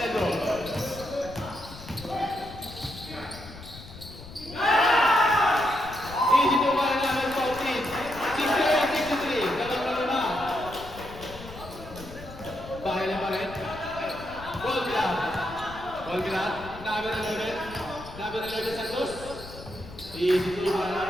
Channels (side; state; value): left; noise; rumble, 15 dB below the sound